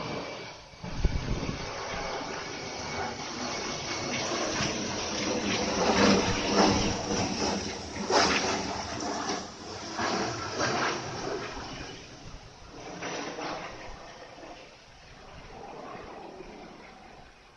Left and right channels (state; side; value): identical; both; correlation 1.00